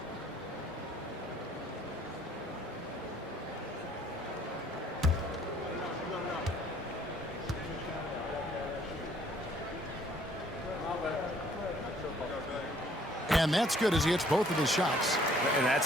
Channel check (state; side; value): normal; both; correlation 0.61